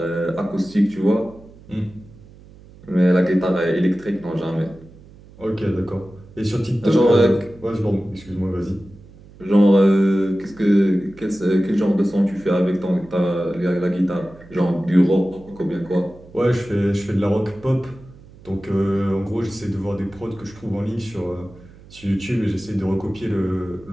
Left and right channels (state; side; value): noise; right; hum, 22 dB below the sound